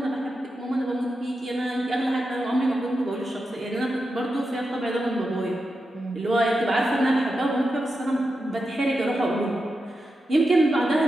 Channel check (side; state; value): both; normal; correlation 0.89